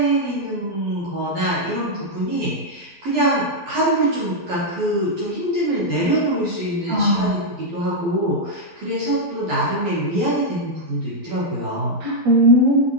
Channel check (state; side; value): late; left; 12 ms